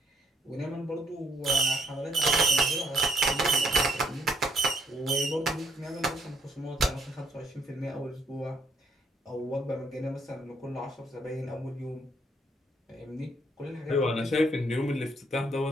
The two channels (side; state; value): both; normal; correlation 0.70